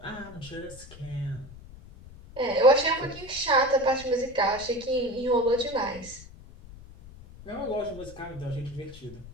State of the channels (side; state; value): left; noise; rumble, 17 dB below the sound